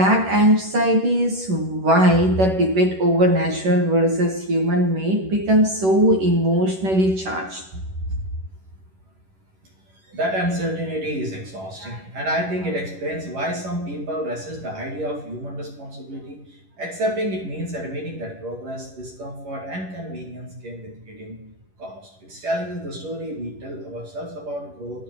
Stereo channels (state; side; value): late; left; 11 ms